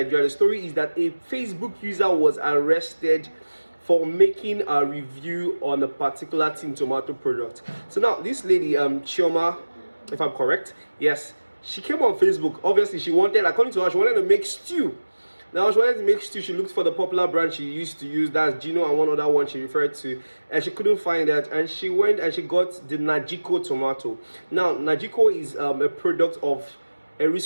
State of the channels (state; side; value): inverted; both; correlation -1.00